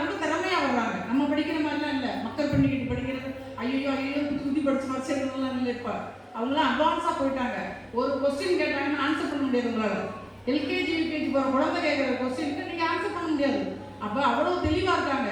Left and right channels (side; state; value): both; identical; correlation 1.00